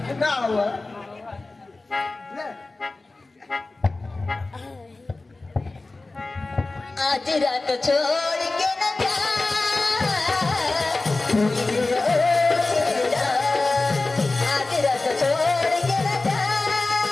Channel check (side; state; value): right; quieter; 3.3 dB